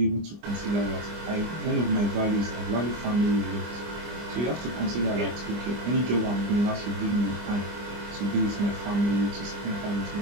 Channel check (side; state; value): left; late; 25 ms